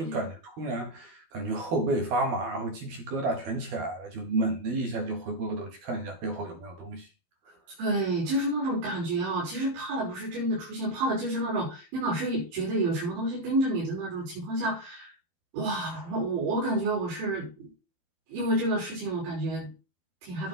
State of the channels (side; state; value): left; late; 12 ms